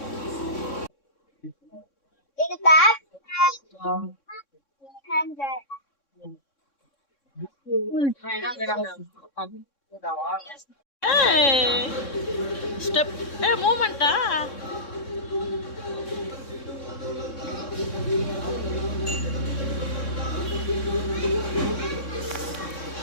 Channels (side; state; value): right; late; 3.6 ms